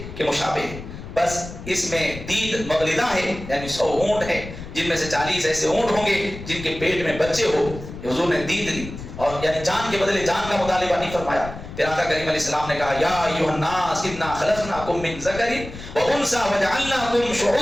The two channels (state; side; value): noise; left; rumble, 12 dB below the sound